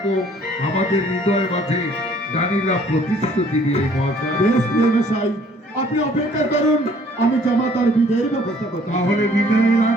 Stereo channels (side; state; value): both; normal; correlation 0.58